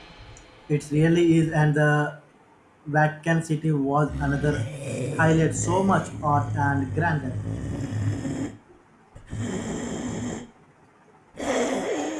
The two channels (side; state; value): both; identical; correlation 1.00